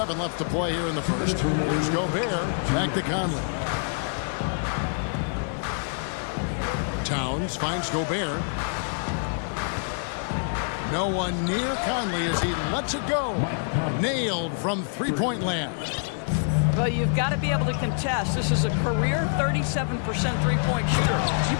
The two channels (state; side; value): silent; right; 61 dB below the other